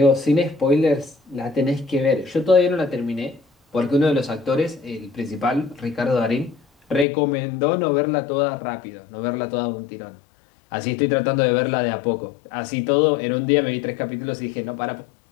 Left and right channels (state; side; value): drops out; right; at 7.1 s